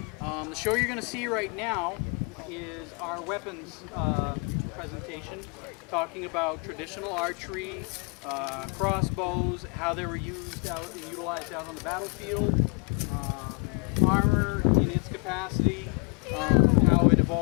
The show you're going to see right now is our weapons presentation, talking about traditional archery, crossbows, how they were used out and utilized out on the battlefield, armor in its capacity, how it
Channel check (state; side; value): quieter; right; 33.4 dB